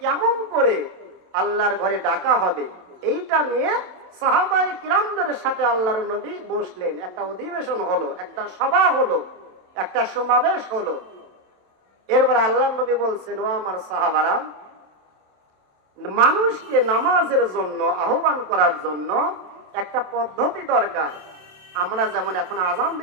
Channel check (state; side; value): late; left; 27 ms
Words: কেমন করে আল্লাহর ঘরে ডাকা হবে, এইটা নিয়ে সাহাবায়ে কিরামদের সাথে আল্লাহর নবী বসলেন। একটা অধিবেশন হলো, একটা সভা হলো, একটা সমাবেশ হলো। এরপর আল্লাহর নবী বলছেন, ও আমার সাহাবারা, মানুষকে নামাজের জন্য আহ্বান করার জন্য একটা পদ্ধতি দরকার। আমরা যেমন এখন আজান